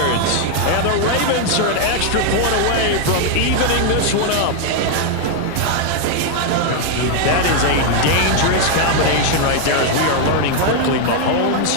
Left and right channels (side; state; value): both; different; correlation 0.00